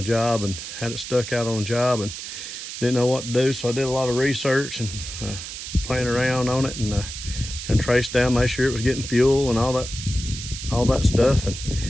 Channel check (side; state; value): right; noise; hiss, 9 dB below the sound